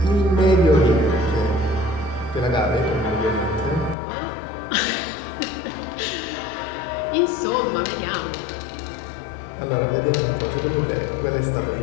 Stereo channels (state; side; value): drops out; right; at 4.0 s